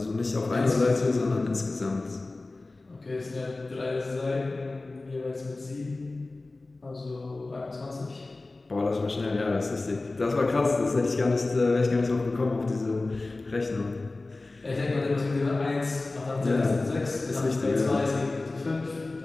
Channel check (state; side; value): quieter; right; 3.2 dB